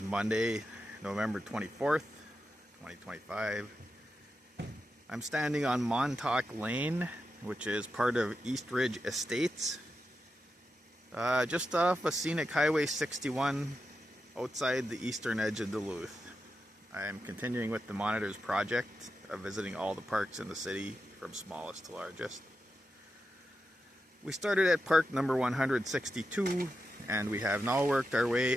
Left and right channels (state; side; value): normal; both; correlation 0.88